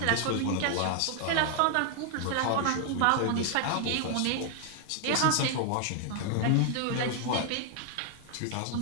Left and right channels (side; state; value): both; different; correlation 0.00